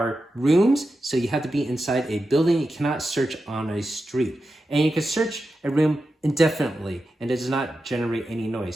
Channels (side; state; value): both; normal; correlation 0.90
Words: rooms, so you have to be inside a building. You cannot search on a street. And you can search a room indefinitely, and it does not generate any